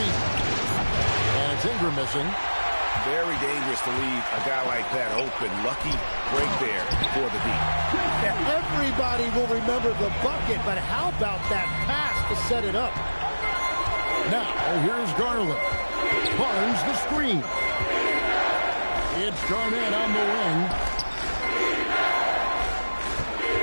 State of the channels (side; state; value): both; inverted; correlation -1.00